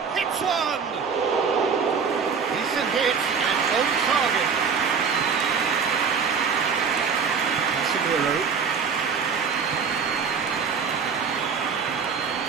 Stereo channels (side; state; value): left; quieter; 6.0 dB